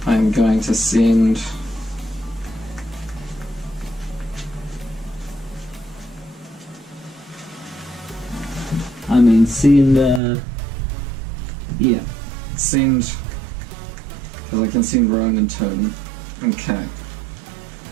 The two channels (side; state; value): left; drops out; at 10.2 s